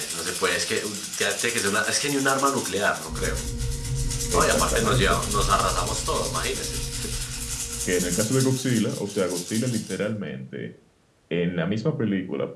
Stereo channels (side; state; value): both; identical; correlation 1.00